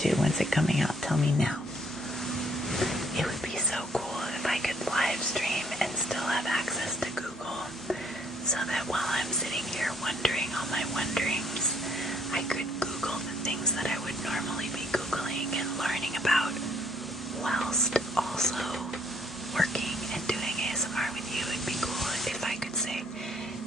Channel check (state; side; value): normal; both; correlation 0.66